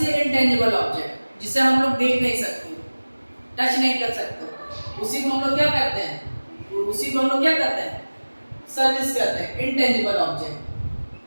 एक इंटेंजिबल ऑब्जेक्ट जिसे हम लोग देख नहीं सकते, टच नहीं कर सकते, उसी को हम लोग क्या करते हैं, उसी को हम लोग क्या करते हैं, सर्विस करते हैं, इंटेंजिबल ऑब्जेक्ट।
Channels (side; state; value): both; inverted; correlation -1.00